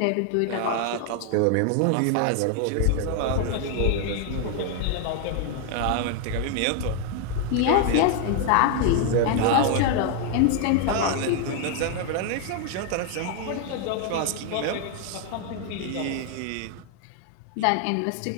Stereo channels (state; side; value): different; both; correlation 0.00